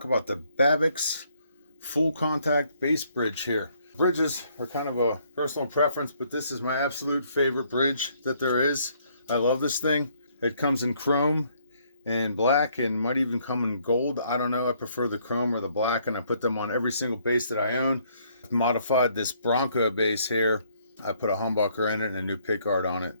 about the Babicz full contact bass bridge here. Bridges are kind of a personal preference, but this is my absolute favorite bridge that there is. I love this thing. It comes in chrome and black and might even come in gold. I don't know. I prefer the chrome or the black, and I put them on every single bass that I own. I've modified this Bronco bass here. I put a humbucker in it and a new pickguard on it.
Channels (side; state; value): both; inverted; correlation -0.67